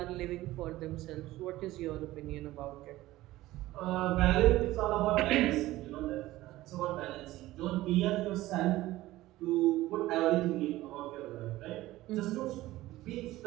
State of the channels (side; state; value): left; quieter; 16.8 dB